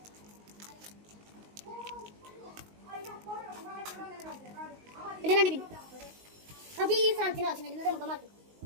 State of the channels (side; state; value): left; late; 19 ms